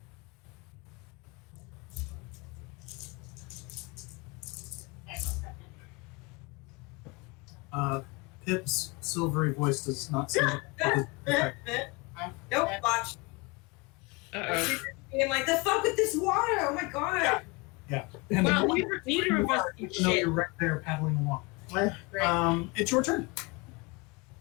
Pip's silvery voice does not seem to Nope, watch. Uh-oh. I'm like, the fuck with this water? Oh my god. Yeah. And Well, the neither of us do even though shit. you're right there paddling along. Right. It's your turn.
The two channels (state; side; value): quieter; right; 27.0 dB